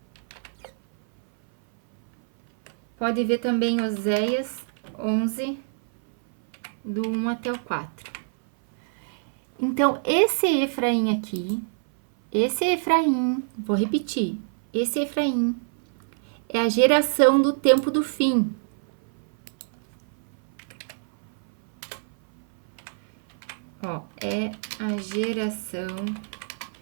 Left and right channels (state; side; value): silent; left; 57 dB below the other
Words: Pode ver também Oséias 11, do 1 até o 4. Então, esse Efraim aqui, vou repetir, esse Efraim é a geração do tempo do fim. Ó, é a geração